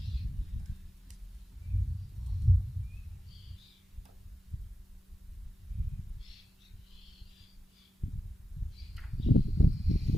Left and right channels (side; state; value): both; normal; correlation 0.92